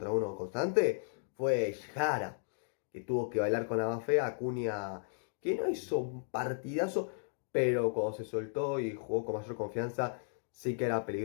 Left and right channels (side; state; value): right; silent; digital silence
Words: 1 constante, fue Jara, que tuvo que bailar con la más fea. Acuña, que no hizo un partidazo, pero cuando se soltó y jugó con mayor confianza, sí que era